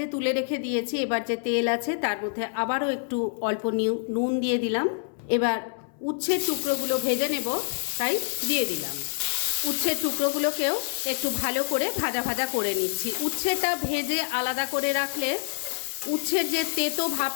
তুলে রেখে দিয়েছি। এবার যে তেল আছে তার মধ্যে আবারও একটু অল্প নুন দিয়ে দিলাম। এবার উচ্ছের টুকরোগুলো ভেজে নেব, তাই দিয়ে দিলাম। উচ্ছের টুকরোগুলোকেও একটু ভালো করে ভাজা ভাজা করে নিচ্ছি। উচ্ছেটা ভেজে আলাদা করে রাখলে উচ্ছের যে তেতো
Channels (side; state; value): right; silent; 60 dB below the other